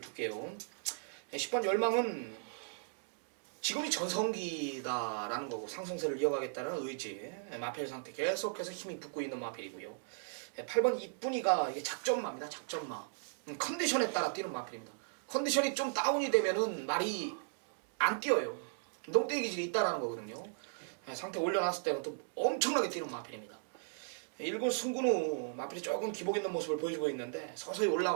10번 열망은 지금이 전성기다라는 거고 상승세를 이어가겠다는 의지. 마필 상태 계속해서 힘이 붙고 있는 마필이고요. 8번 이쁜이가 이게 작전마입니다. 작전마. 컨디션에 따라 뛰는 마필입니다. 컨디션이 좀 다운이 되면은 말이 안 뛰어요. 농대기 기질이 있다라는 거거든요. 상태 올려놨을 때는 또 엄청나게 뛰는 마필입니다. 1군 승군 후 마필이 조금 기복 있는 모습을 보여주고 있는데 서서히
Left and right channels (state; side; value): silent; left; digital silence